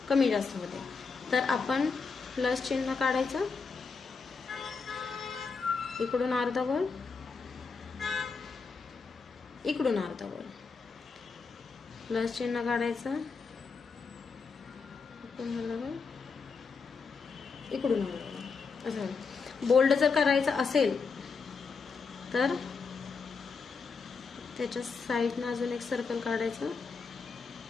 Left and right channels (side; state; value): right; quieter; 4.9 dB